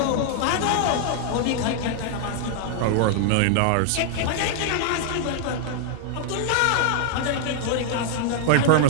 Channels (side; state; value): both; different; correlation 0.00